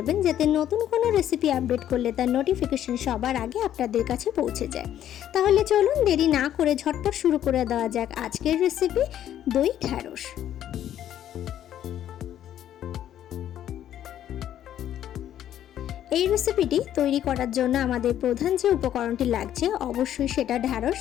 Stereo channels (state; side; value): quieter; right; 11.1 dB